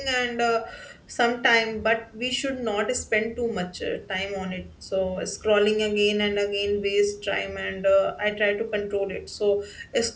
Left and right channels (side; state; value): both; identical; correlation 1.00